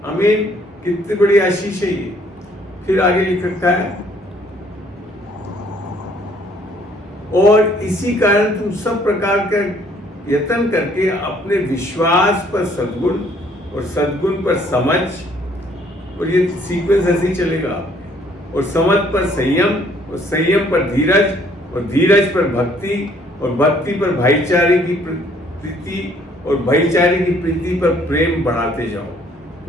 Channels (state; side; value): normal; both; correlation 0.62